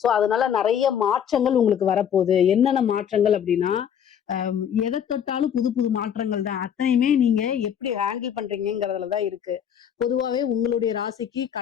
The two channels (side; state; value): right; quieter; 8.8 dB